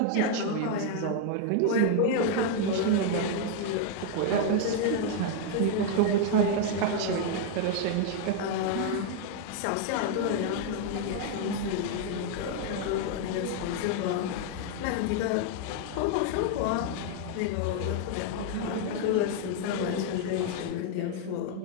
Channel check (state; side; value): different; both; correlation 0.00